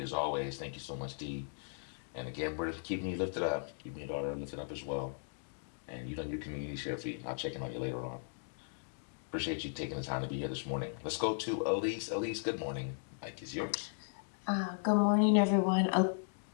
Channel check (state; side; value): silent; right; digital silence